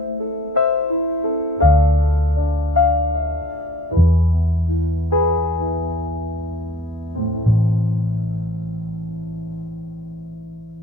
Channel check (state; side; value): normal; both; correlation 0.50